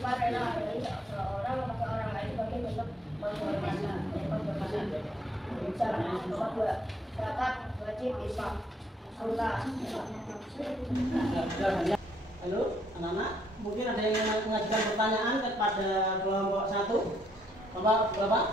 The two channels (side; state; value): both; normal; correlation 0.70